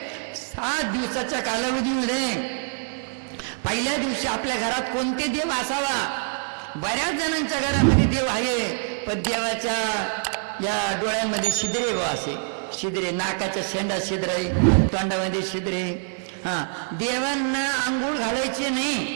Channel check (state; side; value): silent; left; 61 dB below the other